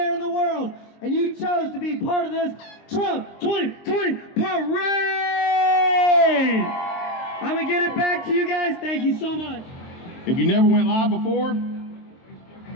in the world, and you chose to be part of this Trump 2020 parade. I'm gonna get it back to you guys. Thank you so much. If you never went live before,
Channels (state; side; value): late; right; 23 ms